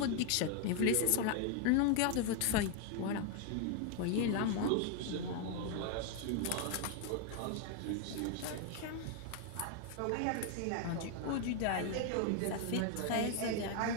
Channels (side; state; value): both; different; correlation 0.00